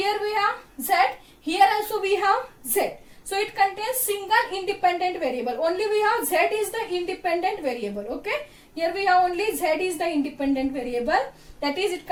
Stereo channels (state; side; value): identical; both; correlation 1.00